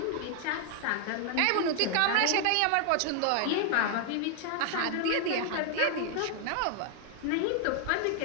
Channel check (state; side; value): different; both; correlation 0.00